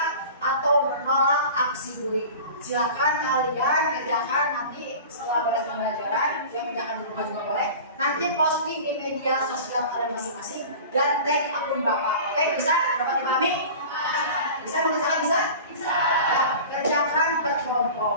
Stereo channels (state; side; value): inverted; both; correlation -0.38